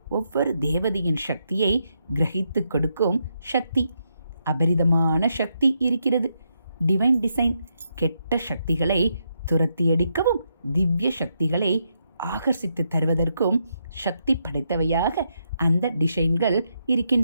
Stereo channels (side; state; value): both; inverted; correlation -0.80